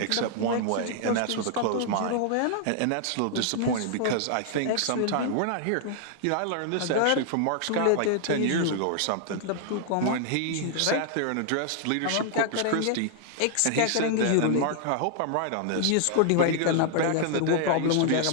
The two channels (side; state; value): both; different; correlation 0.00